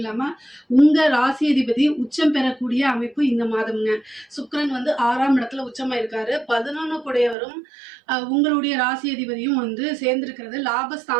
உங்க ராசி அதிபதி உச்சம் பெறக்கூடிய அமைப்பு இந்த மாதம்ங்க. சுக்கிரன் 6ஆம் இடத்துல உச்சமா இருக்காரு. 11 கூடையவரும் உங்களுடைய ராசி அதிபதியும் சேர்ந்திருக்கிறது.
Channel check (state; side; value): drops out; left; at 7.4 s